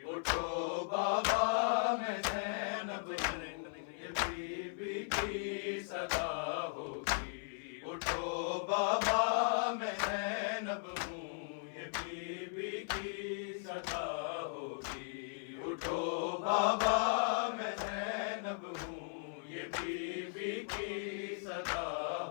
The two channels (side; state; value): right; silent; 53 dB below the other